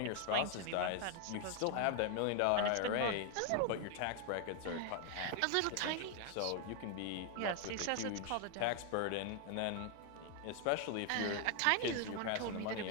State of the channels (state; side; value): different; both; correlation 0.00